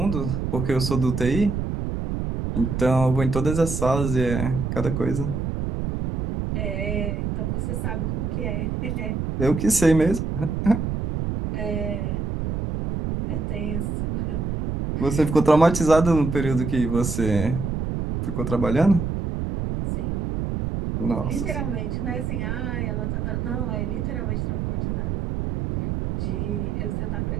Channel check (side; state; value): right; noise; rumble, 2 dB below the sound